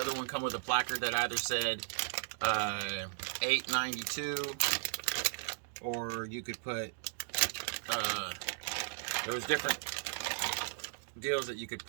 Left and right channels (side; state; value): left; silent; digital silence